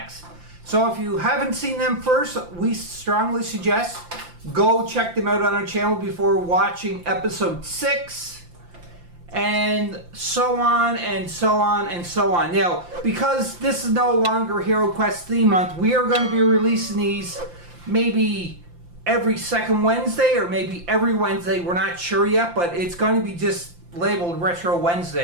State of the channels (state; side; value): late; left; 5.8 ms